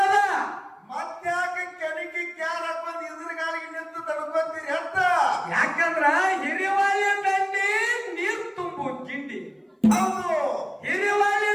ಮತ್ತ್ಯಾಕೆ ಕೆಣಕಿ ಕ್ಯಾರ ಹಾಕೊಂಡ್ ಎದುರುಗಾಲಿಗೆ ನಿಂತು ತಡ್ಕೊಂತೀರಿ ಅಂತ. ಯಾಕಂದ್ರ ಹಿರಿವಾಳಿ ದಂಡಿ ನೀರ್ ತುಂಬು ಗಿಂಡಿ. ಹೌದು, ಹಿರಿವಾಳಿ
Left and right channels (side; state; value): both; identical; correlation 1.00